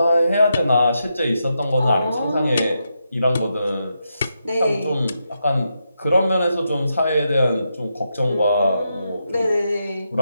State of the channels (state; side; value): inverted; both; correlation -0.84